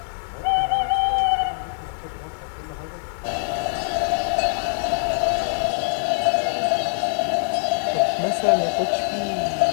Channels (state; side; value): silent; right; 63 dB below the other